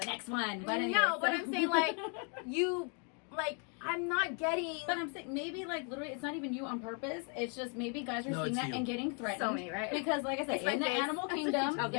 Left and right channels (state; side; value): quieter; right; 38.7 dB